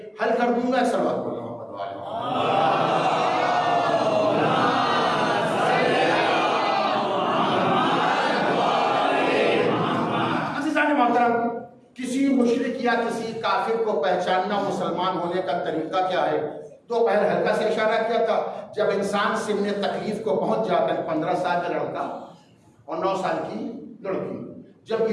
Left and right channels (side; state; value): both; identical; correlation 1.00